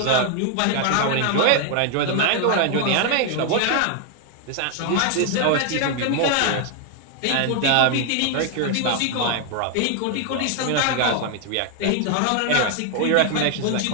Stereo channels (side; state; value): both; different; correlation 0.00